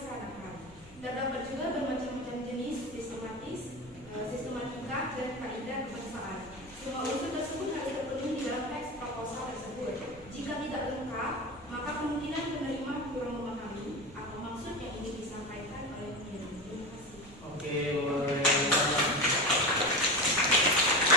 Terdapat juga bermacam-macam jenis sistematika dan kaidah kebangsaan. Semua unsur tersebut harus terpenuhi di dalam teks proposal tersebut. Jika tidak lengkap, maka kemungkinan penerima kurang memahami apa maksud yang ingin disampaikan oleh pengirim. Terima kasih. Oke, luar biasa.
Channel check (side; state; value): both; normal; correlation 0.24